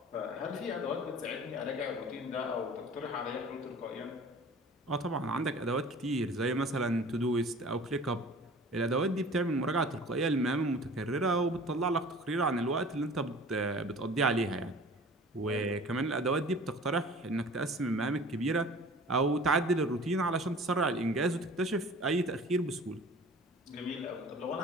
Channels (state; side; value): normal; both; correlation 0.44